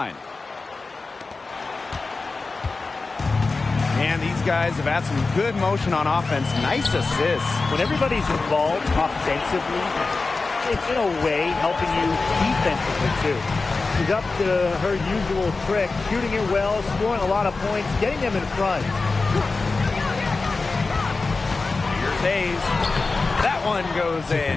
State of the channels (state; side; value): quieter; right; 3.9 dB